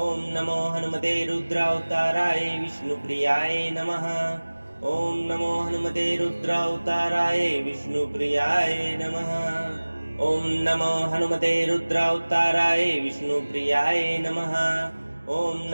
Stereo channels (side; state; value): both; inverted; correlation -1.00